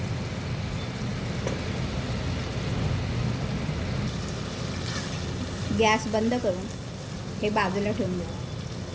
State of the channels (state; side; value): identical; both; correlation 1.00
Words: गॅस बंद करून हे बाजूला ठेवून देऊ.